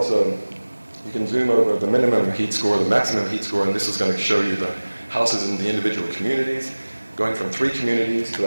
you can zoom over the minimum heat score, the maximum heat score, and this is going to show you the houses in the individual communities, going from 3 communities to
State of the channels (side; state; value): both; inverted; correlation -1.00